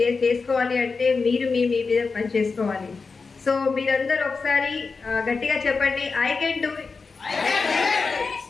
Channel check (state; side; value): quieter; right; 4.6 dB